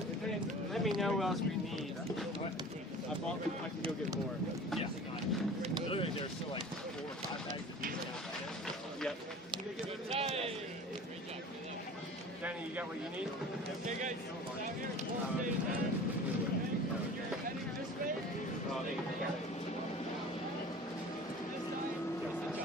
Let me know what else we need. I can go get more. Yeah. Literally, there's still like 4 or 5 bags of beef. Yep. Danny, you got what you need? Okay, guys. Down here. You're heading this way? Oh, they got it.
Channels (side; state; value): both; normal; correlation 0.41